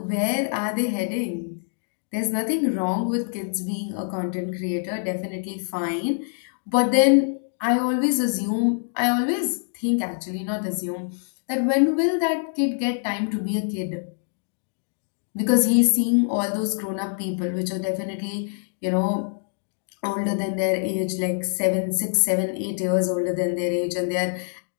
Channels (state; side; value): silent; right; digital silence